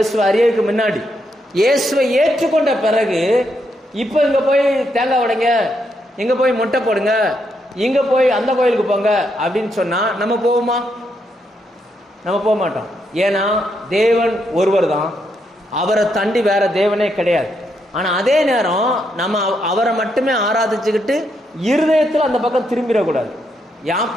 அறியறதுக்கு முன்னாடி. இயேசுவை ஏற்றுக்கொண்ட பிறகு இப்போ இங்கே போய் தேங்காய் உடைங்க, இங்கே போய் மொட்டை போடுங்க, இங்கே போய் அந்த கோயிலுக்கு போங்க அப்படின்னு சொன்னால் நம்ம போவோமா? நம்ம போக மாட்டோம். ஏன்னா தேவன் ஒருவர் தான், அவரை தாண்டி வேற தேவனே கிடையாது. ஆனால் அதே நேரம் நம்ம அவரை மட்டுமே ஆராதிச்சுக்கிட்டு இருதயத்தில் அந்த பக்கம் திரும்பிடக்கூடாது.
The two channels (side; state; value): both; normal; correlation 0.79